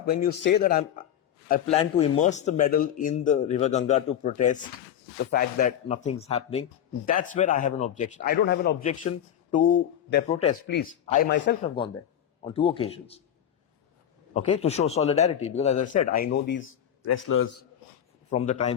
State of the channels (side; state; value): right; quieter; 9.8 dB